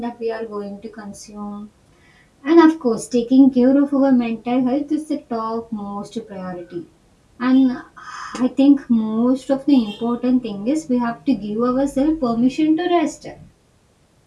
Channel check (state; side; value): identical; both; correlation 1.00